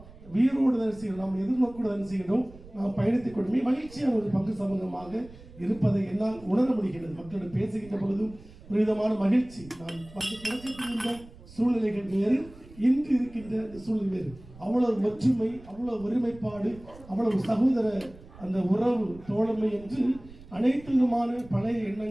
வீரோடு தான் செய்யணும், நாம் எதிர்நோக்கோடு தான் செய்யணும். நாம் பயணித்துக் கொண்டுமே மகிழ்ச்சியான ஒரு பங்கு சமூகமாக இருப்பதை என்னால் உணர முடிகிறது. மக்களோடு பேசுகின்ற பொழுதும் ஒரு விதமான மகிழ்ச்சி. நான் தொடக்கத்தில் இருந்த சூழ்நிலைகள் வேறு, இன்று இருக்கின்ற சூழ்நிலை வேறு. அவ்வளவு ஒற்றுமை, அவ்வளவு ஒருமைப்பாடு, அவ்வளவு சகோதர அந்த உறவு தோழமை என்று அனைத்து விதமான பழைய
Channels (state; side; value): noise; right; rumble, 20 dB below the sound